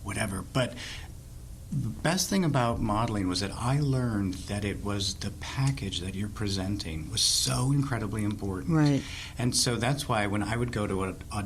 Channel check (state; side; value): identical; both; correlation 1.00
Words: whatever. But the best thing about modeling was that I learned that it was the package that you're presenting was so incredibly important. Right. And so that's why when I would go to